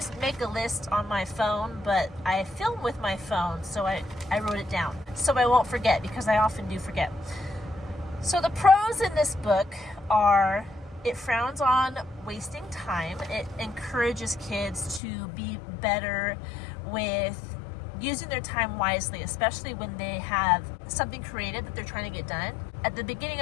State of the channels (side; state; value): right; drops out; at 15.0 s